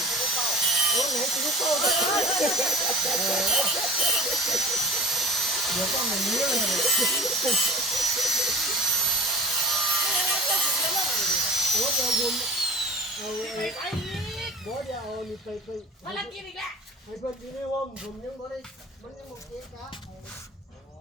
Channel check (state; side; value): normal; both; correlation 0.39